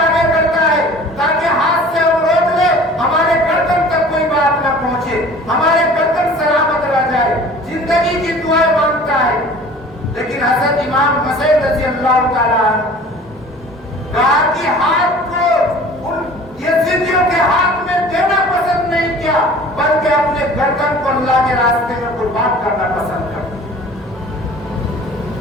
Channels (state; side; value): normal; both; correlation 0.45